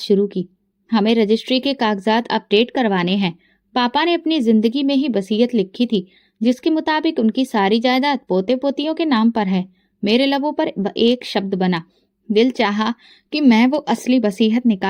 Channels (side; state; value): both; identical; correlation 1.00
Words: की। हमें रजिस्ट्री के कागजात अपडेट करवाने हैं। पापा ने अपनी जिंदगी में ही वसीयत लिखी थी, जिसके मुताबिक उनकी सारी जायदाद पोते पोतियों के नाम पर है। मेरे लबों पर एक शब्द बना। दिल चाहा कि मैं वो असली वसीयत